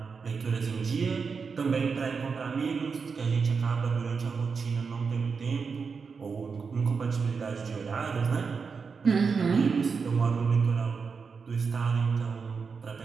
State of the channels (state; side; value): quieter; left; 5.3 dB